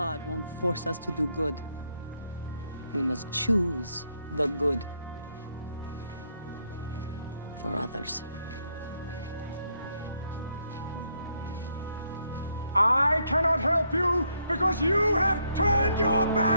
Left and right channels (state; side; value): inverted; both; correlation -0.74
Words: won't force us to do good. We must choose the good for others. I cannot help you because you have turned your